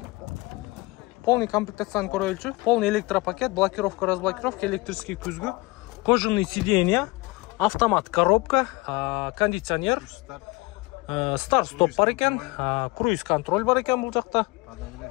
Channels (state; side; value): quieter; right; 23.5 dB